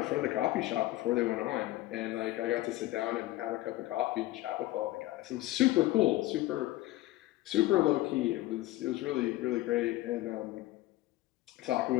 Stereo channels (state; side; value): quieter; right; 17.2 dB